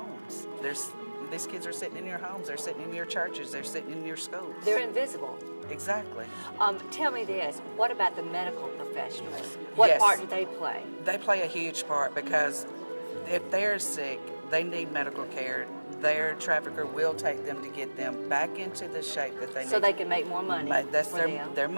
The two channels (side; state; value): both; inverted; correlation -1.00